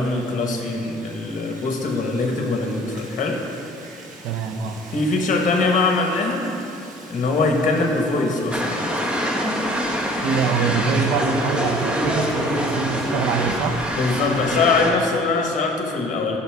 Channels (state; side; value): normal; both; correlation 0.50